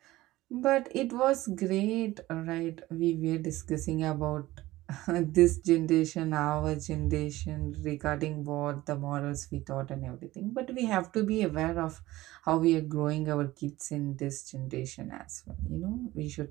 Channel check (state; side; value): quieter; left; 17.5 dB